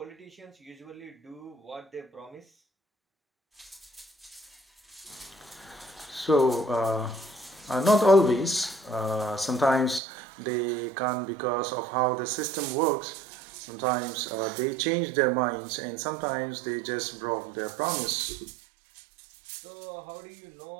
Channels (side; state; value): left; drops out; at 10.0 s